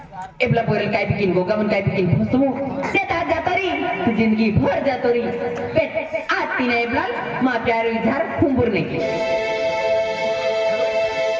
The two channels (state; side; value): identical; both; correlation 1.00